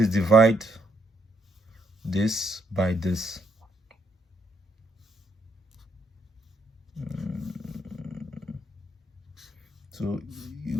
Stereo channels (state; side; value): normal; both; correlation 0.73